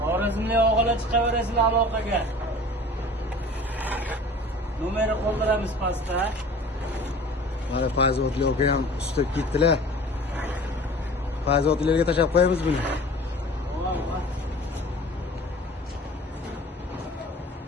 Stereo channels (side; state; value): both; normal; correlation 0.43